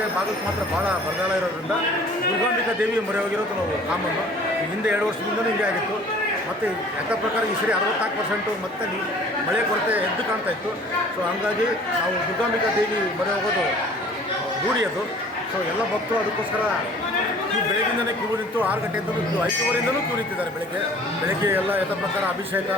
ಭಾಗಕ್ಕೆ ಮಾತ್ರ ಭಾಳ ಬರಗಾಲ ಇರೋದ್ರಿಂದ ದುರ್ಗಾಂಬಿಕಾ ದೇವಿ ಮೊರೆ ಹೋಗಿರೋದು ನಾವು ಕಾಮನ್ನು. ಹಿಂದೆ 2 ವರ್ಷದಿಂದಲೂ ಹಿಂಗೆ ಆಗಿತ್ತು. ಮತ್ತು ಲೆಕ್ಕ ಪ್ರಕಾರ ಈ ಸರಿ 64% ಮತ್ತೆ ಮಳೆ ಕೊರತೆ ಎದ್ದು ಕಾಣ್ತಾ ಇತ್ತು. ಸೊ ಹಂಗಾಗಿ ನಾವು ದುರ್ಗಾಂಬಿಕಾ ದೇವಿ ಮೊರೆ ಹೋಗೋದು ರೂಢಿ ಅದು. ಸೊ ಎಲ್ಲ ಭಕ್ತರು ಅದಕ್ಕೋಸ್ಕರ ಬೆಳಗ್ಗಿಂದಲೇ ಕ್ಯೂ ನಿಂತು 6 ಗಂಟೆಯಿಂದಲೂ 5:15 ಕ್ಯೂ ನಿಂತಿದ್ದಾರೆ. ಬೆಳಗ್ಗೆ ಎಲ್ಲ ಯಥ ಪ್ರಕಾರ ಅಭಿಷೇಕ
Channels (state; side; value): normal; both; correlation 0.50